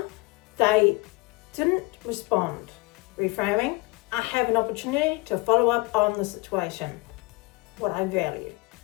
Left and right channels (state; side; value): quieter; right; 24.2 dB